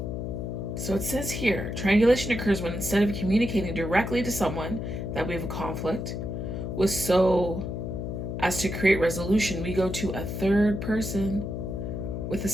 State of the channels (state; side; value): noise; left; hum, 4 dB below the sound